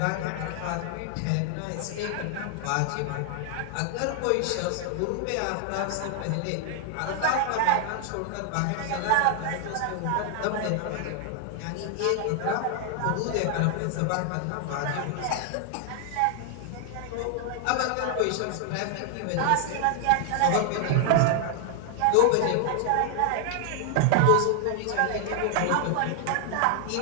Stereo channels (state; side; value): different; both; correlation 0.00